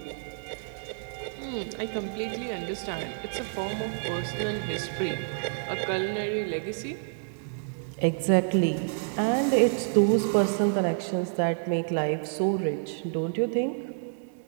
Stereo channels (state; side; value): silent; left; digital silence